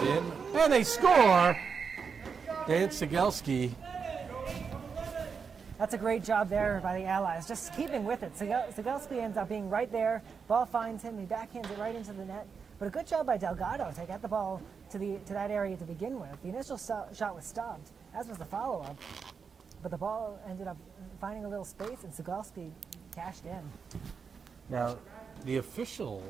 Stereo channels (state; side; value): quieter; left; 5.9 dB